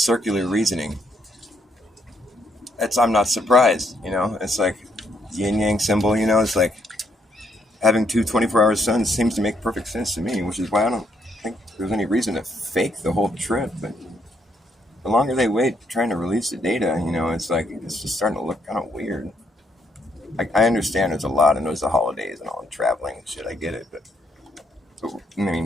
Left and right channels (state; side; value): normal; both; correlation 0.72